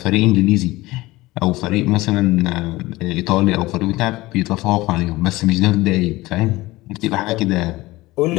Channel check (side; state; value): right; quieter; 19.5 dB